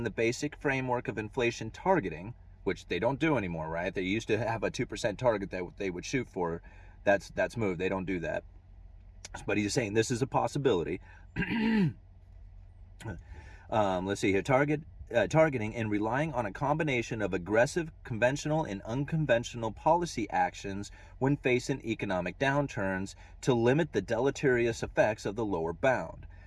the basic framework of inflation targeting, which they don't do anymore, right? They used to have a 2% target that they would shoot for. That's moved. They don't do that. But he's saying this is a possibility. Let's see here. Targeting and relying on a combination of aggressive, conventional, and unconventional policy actions when facing economic downturns to limit the deleterious effects of the lower bound.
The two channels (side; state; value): both; identical; correlation 1.00